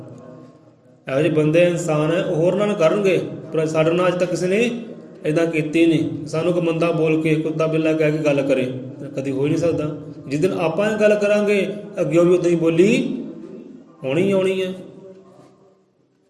ਇਹੋ ਜਿਹੇ ਬੰਦੇ ਇਨਸਾਨ ਹੈ, ਉਹ ਹੋਰ ਨਾਲ ਕਰਨਗੇ, ਪਰ ਸਾਡੇ ਨਾਲ ਅੱਜ ਤੱਕ ਕਿਸੇ ਨੇ ਇੱਦਾਂ ਕੀਤੀ ਨਹੀਂ। ਸਾਨੂੰ ਕੋਈ ਮੰਦਾ ਬੋਲ ਕੇ, ਕੁੱਤਾ ਬਿੱਲਾ ਕਹਿ ਕੇ ਗੱਲ ਕਰੇ, ਕਦੀ ਹੋ ਹੀ ਨਹੀਂ ਸਕਦਾ। ਜਿਸ ਦਿਨ ਆਪਾਂ ਇਹ ਗੱਲ ਕਰਾਂਗੇ ਅੱਗਿਓਂ ਵੀ ਉੱਦਾਂ ਹੀ ਬੋਲੀ ਹੋਣੀ ਆਉਣੀ ਹੈ।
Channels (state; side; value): identical; both; correlation 1.00